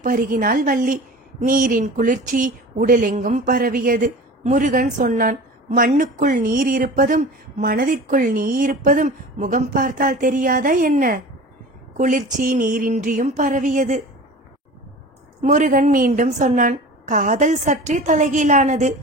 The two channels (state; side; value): normal; both; correlation 0.37